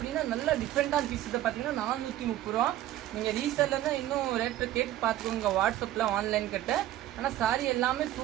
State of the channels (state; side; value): quieter; left; 13.5 dB